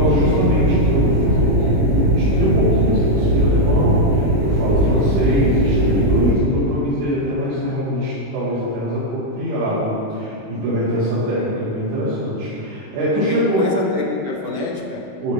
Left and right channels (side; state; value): left; late; 20 ms